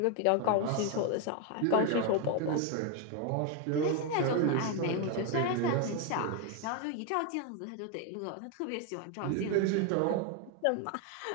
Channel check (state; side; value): different; both; correlation 0.01